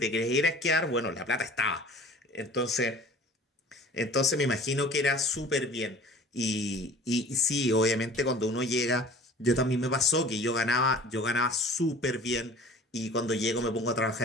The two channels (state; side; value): normal; both; correlation 0.45